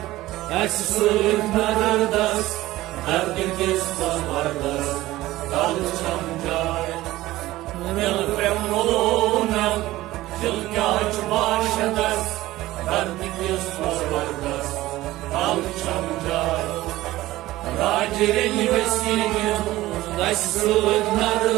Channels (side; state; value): left; quieter; 16.9 dB